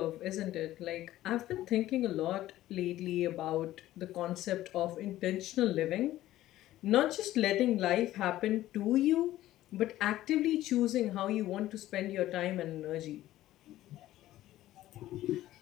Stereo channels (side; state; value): right; quieter; 14.7 dB